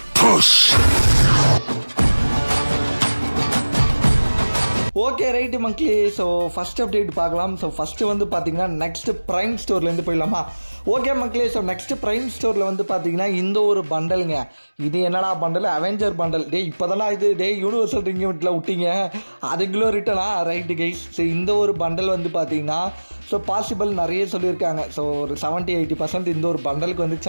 push. ஓகே ரைட்டு மக்களே, ஸோ ஃபஸ்ட் அப்டேட் பார்க்கலாம். ஸோ ஃபஸ்ட்டு வந்து பார்த்தீங்கன்னா நெக்ஸ்ட் ப்ரைம் ஸ்டோர்லேருந்து போயிடலாமா? ஓகே மக்களே, ஸோ நெக்ஸ்ட் ப்ரைம் ஸ்டோரில் வந்து பார்த்தீங்கன்னா இந்த ஒரு பண்டலுங்க. இது என்னடா பண்டல்? Avenger bundle. டே இப்போ தானே இது யூனிவர்சல் ரிங்கில் விட்டீங்க, அதுக்குள்ளே ரிட்டனா? Right guys. ஸோ இந்த ஒரு பண்டல் வந்து பார்த்தீங்கன்னா ஸோ பாசிபிள் நிறைய சொல்லியிருக்காங்க. ஸோ ஒரு 70-80% இந்த ஒரு பண்டலுக்கு வந்து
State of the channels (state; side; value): inverted; both; correlation -1.00